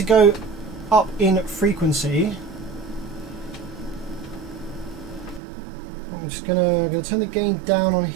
go up in frequency, I'm just gonna turn the gain down on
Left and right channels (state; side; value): drops out; left; at 5.4 s